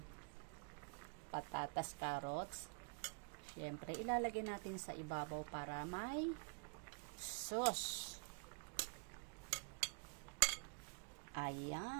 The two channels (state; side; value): quieter; left; 35.6 dB